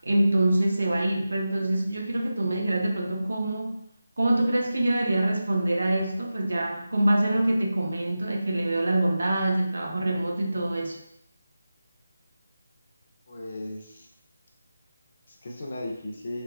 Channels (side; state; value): both; inverted; correlation -0.94